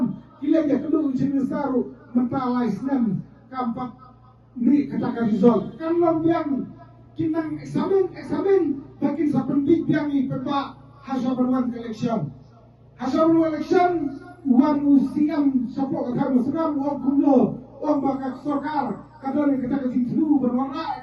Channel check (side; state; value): both; identical; correlation 1.00